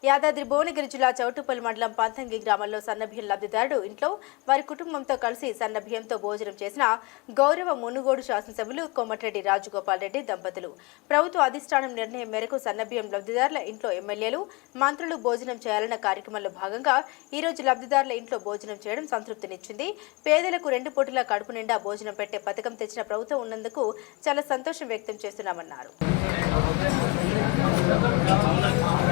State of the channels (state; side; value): quieter; right; 25.9 dB